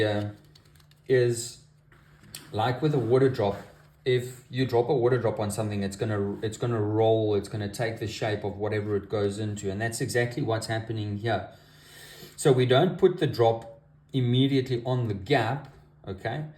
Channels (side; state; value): both; identical; correlation 1.00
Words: is, like with a water drop, if you drop a water drop on something, it's gonna roll, it's gonna take the shape of whatever it goes into, and that's exactly what's happening here. So we don't put the drop immediately on the gap, okay?